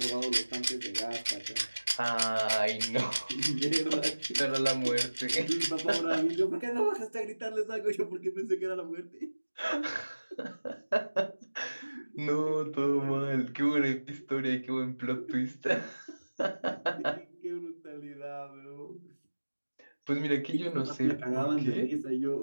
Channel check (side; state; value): both; inverted; correlation -1.00